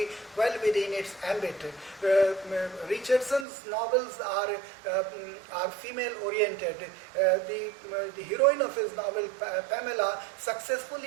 well within its ambit. Richardson's novels are female-oriented. The heroine of his novel, Pamela,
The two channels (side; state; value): left; drops out; at 3.5 s